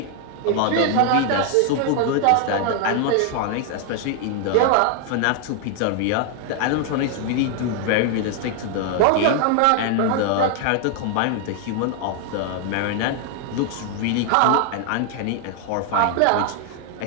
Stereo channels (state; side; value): different; both; correlation 0.00